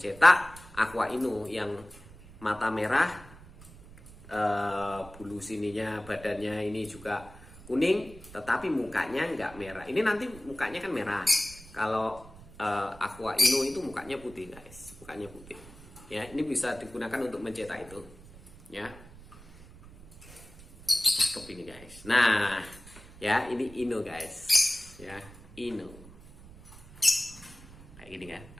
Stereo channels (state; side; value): noise; right; rumble, 19 dB below the sound